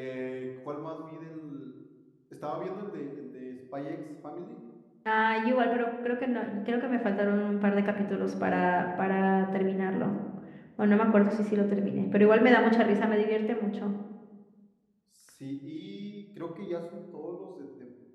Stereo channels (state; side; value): identical; both; correlation 1.00